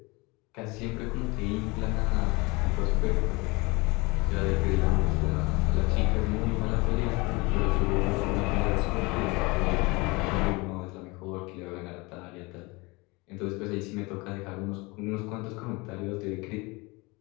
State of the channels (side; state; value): right; quieter; 25.4 dB